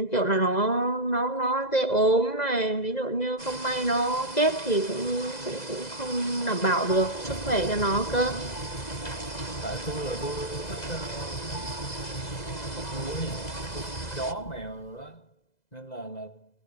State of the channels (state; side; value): late; right; 2.0 ms